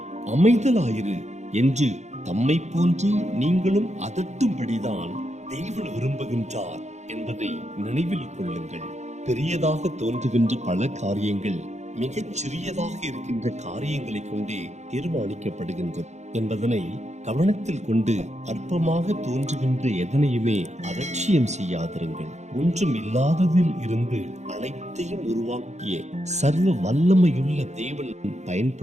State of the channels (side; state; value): left; late; 0.33 ms